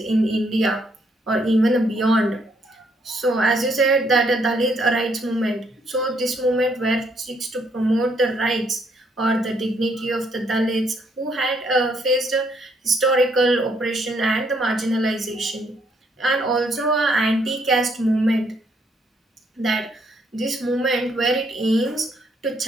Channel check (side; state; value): both; normal; correlation 0.71